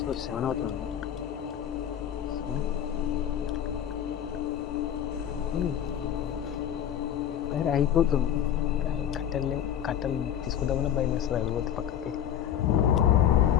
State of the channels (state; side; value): quieter; right; 9.9 dB